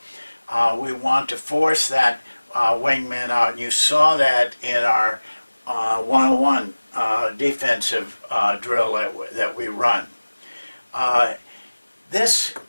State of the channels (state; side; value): inverted; both; correlation -1.00